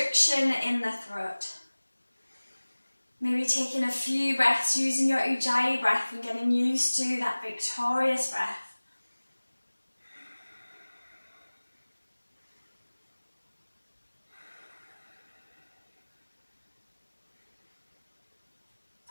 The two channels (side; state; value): both; inverted; correlation -1.00